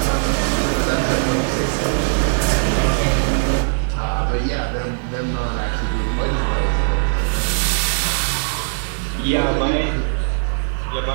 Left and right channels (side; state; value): left; silent; digital silence